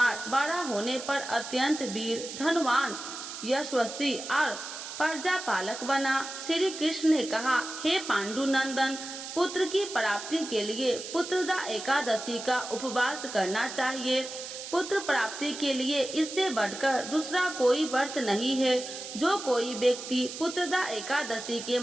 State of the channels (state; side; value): noise; right; hiss, 9 dB below the sound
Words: बड़ा होने पर अत्यंत वीर, धनवान, यशस्वी और प्रजा पालक बना। श्री कृष्ण ने कहा, हे पांडुनंदन, पुत्र की प्राप्ति के लिए पुत्रदा एकादशी का उपवास करना चाहिए। पुत्र प्राप्ति के लिए इससे बढ़कर दूसरा कोई व्रत नहीं है। जो कोई व्यक्ति पुत्रदा एकादशी के